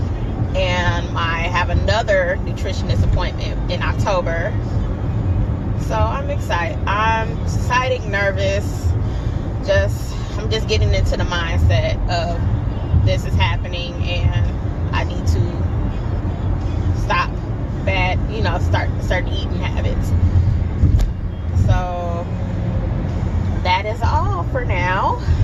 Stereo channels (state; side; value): identical; both; correlation 1.00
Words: and I have another nutritionist appointment in October. So I'm excited. I'm excited, nervous. I'm just getting into the mindset of this is happening, and I need to stop bad, start eating habits. So that is all for now.